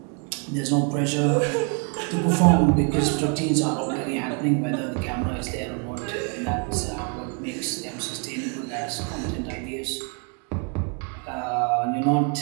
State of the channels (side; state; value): left; quieter; 37.0 dB